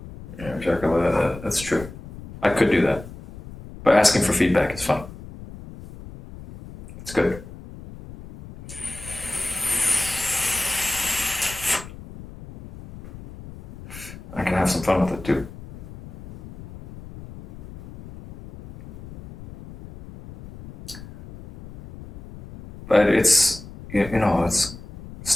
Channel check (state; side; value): noise; left; rumble, 15 dB below the sound